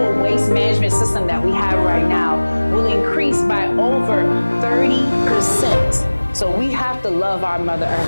waste management system that we have right now will increase by over 30%. So we have to love our Mother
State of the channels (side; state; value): both; inverted; correlation -1.00